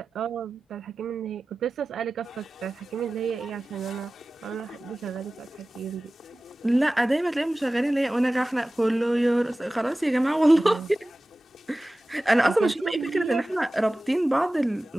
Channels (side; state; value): both; normal; correlation 0.97